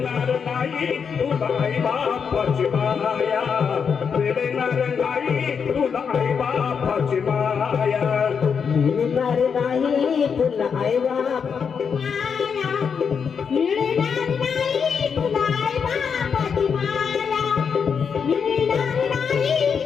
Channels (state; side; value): quieter; right; 6.5 dB